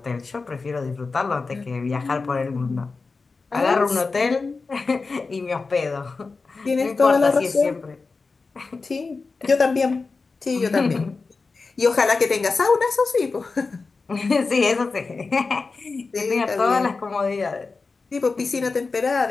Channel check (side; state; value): right; quieter; 4.2 dB